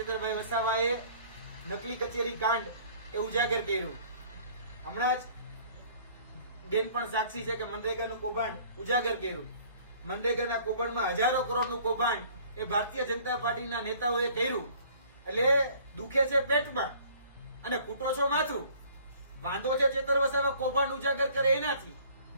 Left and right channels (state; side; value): inverted; both; correlation -0.54